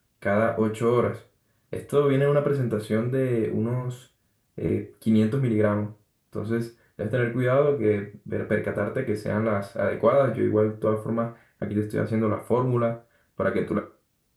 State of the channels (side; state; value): both; identical; correlation 1.00